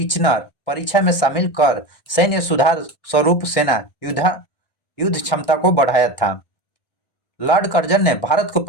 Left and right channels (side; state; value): right; late; 1.4 ms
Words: परीक्षा में शामिल कर सैन्य सुधार स्वरूप सेना युद्ध क्षमता को बढ़ाया था। लॉर्ड कर्जन ने भारत को